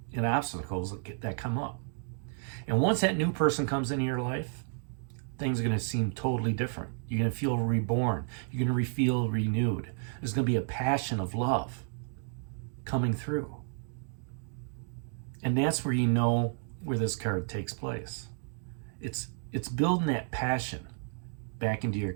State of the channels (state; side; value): silent; left; digital silence